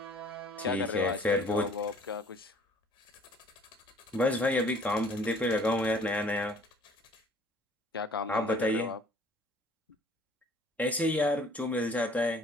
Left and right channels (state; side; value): normal; both; correlation 0.55